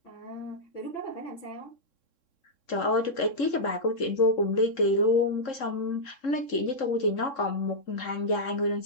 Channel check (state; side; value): late; right; 3.7 ms